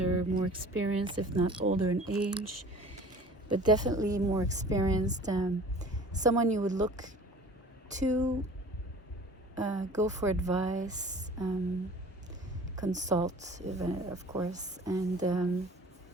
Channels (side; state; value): both; normal; correlation 0.45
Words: more experienced, if not older in age, but definitely more experienced. Someone you would look to, go for advice, consult, of course, and